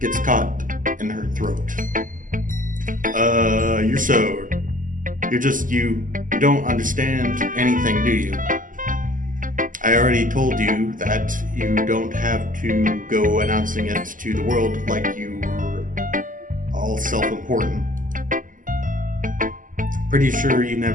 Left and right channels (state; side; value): late; left; 0.38 ms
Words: caught in her throat. You don't understand anything, do you? I already told you that you don't have to go announcing it to the world like you were all self-important. Pretty sure you